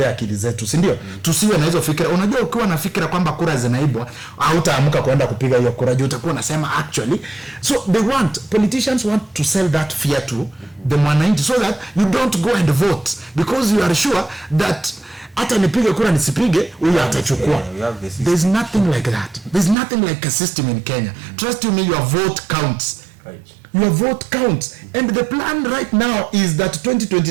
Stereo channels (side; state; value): left; drops out; at 19.8 s